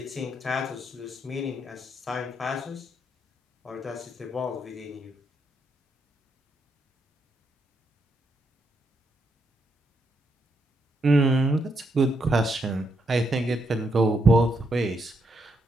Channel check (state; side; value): normal; both; correlation 0.79